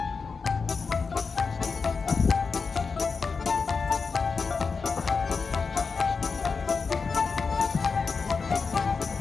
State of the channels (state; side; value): quieter; right; 4.9 dB